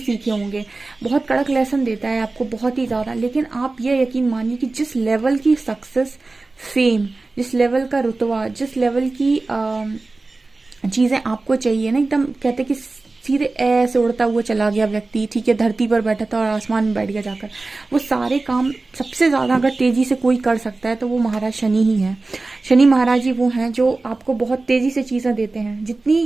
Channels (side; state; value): left; quieter; 3.4 dB